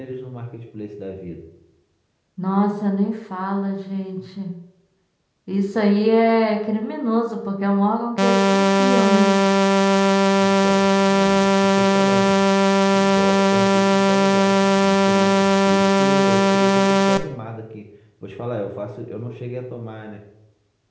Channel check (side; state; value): both; identical; correlation 1.00